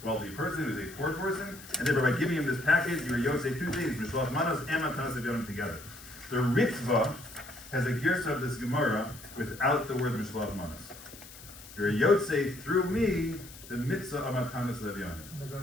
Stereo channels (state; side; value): noise; left; hiss, 17 dB below the sound